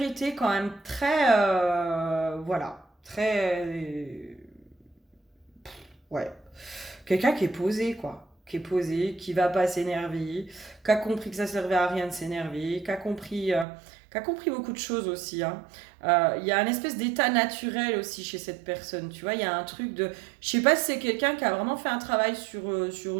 quand même très, voilà, très, ouais, quelqu'un qui est posé, quoi, qui est posé, qui va pas s'énerver, qui a compris que ça servait à rien de s'énerver, qui a compris beaucoup de choses aussi, hein. Il y a un espèce d'état naturel aussi chez cette personne, tu vois, il y a un truc de, je sais pas si c'est quelqu'un qui a vraiment fait un travail sur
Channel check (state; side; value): drops out; left; at 13.7 s